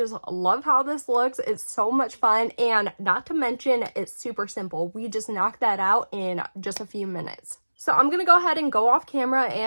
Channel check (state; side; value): inverted; both; correlation -1.00